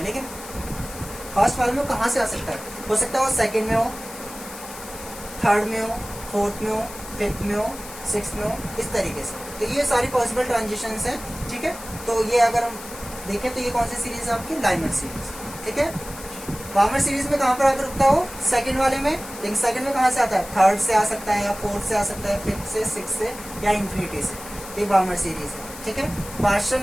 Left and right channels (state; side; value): noise; left; hiss, 14 dB below the sound